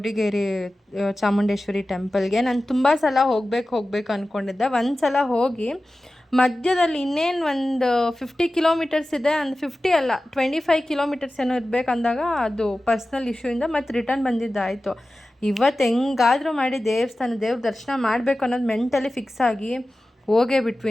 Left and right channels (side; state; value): both; normal; correlation 0.95